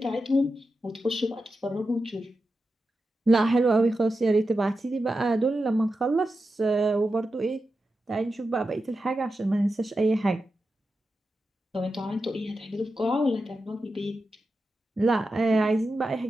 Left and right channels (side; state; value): both; normal; correlation 0.90